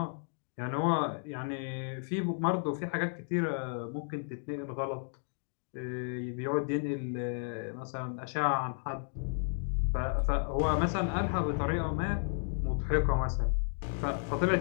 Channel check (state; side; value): silent; right; 56 dB below the other